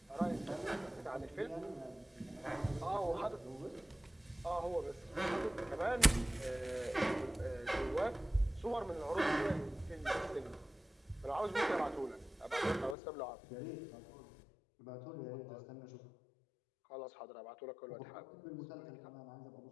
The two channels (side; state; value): right; drops out; at 13.0 s